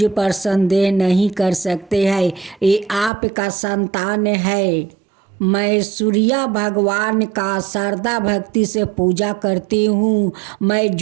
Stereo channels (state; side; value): drops out; left; at 3.1 s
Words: पर संदेह नहीं कर सकते हैं, ये आपका संतान है। मैं सूर्य भगवान का श्रद्धा भक्ति से पूजा करती हूँ, मैं